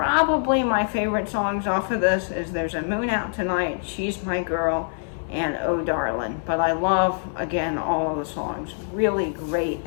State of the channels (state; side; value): silent; right; digital silence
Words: my favorite songs off of this is There's a Moon Out Tonight, She's My Girl, and Oh Darlin'. But I love, again, all of the songs. Really great